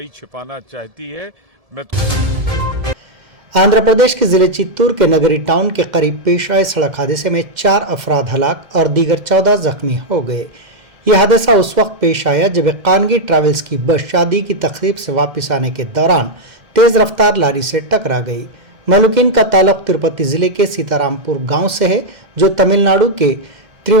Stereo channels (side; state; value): left; late; 2.1 ms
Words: छिपाना चाहती है। آندھرا پردیش کے ضلع چتور کے نگری ٹاؤن کے قریب پیش آئے سڑک حادثے میں 4 افراد ہلاک اور دیگر 14 زخمی ہو گئے۔ یہ حادثہ اس وقت پیش آیا جب ایک خانگی ٹریولز کی بس شادی کی تقریب سے واپس آنے کے دوران تیز رفتار لاری سے ٹکرا گئی۔ مہلوکین کا تعلق تروپتی ضلع کے سیتارام پور گاؤں سے ہے، جو تمل ناڈو کے